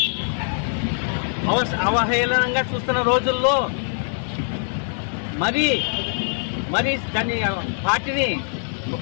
అవహేళనంగా చూస్తున్న రోజుల్లో మరి దాని పార్టీని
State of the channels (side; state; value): right; silent; 63 dB below the other